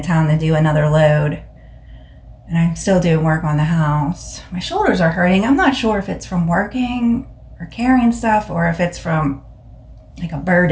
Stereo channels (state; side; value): identical; both; correlation 1.00